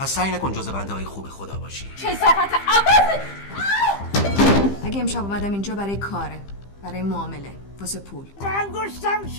سعی نکن جز بنده های خوب خدا باشی. کثافت عوض. اگه امشب اومدم اینجا برای کاره، برای معامله، واسه پول. انگشتم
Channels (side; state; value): right; late; 15 ms